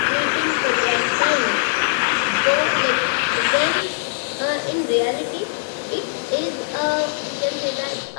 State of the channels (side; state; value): right; silent; digital silence